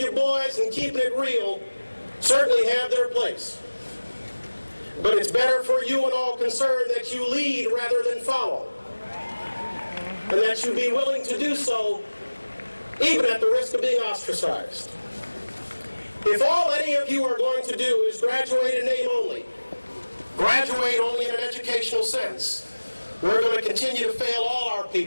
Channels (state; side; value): inverted; both; correlation -1.00